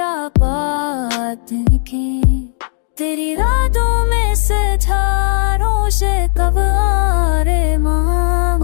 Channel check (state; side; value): silent; right; digital silence